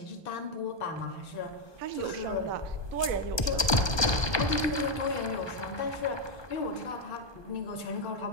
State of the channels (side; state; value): right; late; 1.2 ms